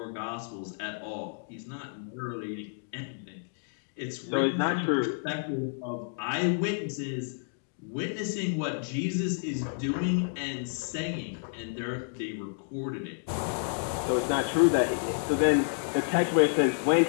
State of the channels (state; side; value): silent; right; digital silence